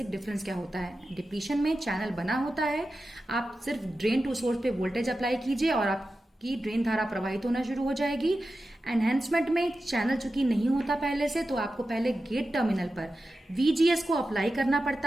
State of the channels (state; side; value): normal; both; correlation 0.92